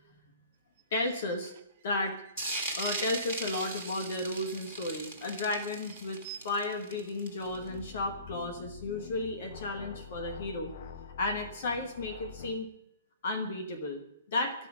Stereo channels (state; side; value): inverted; both; correlation -0.46